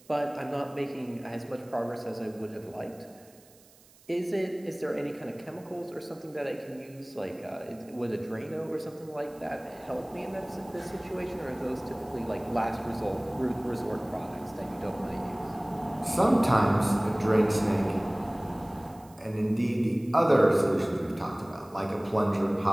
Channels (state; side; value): noise; right; hiss, 27 dB below the sound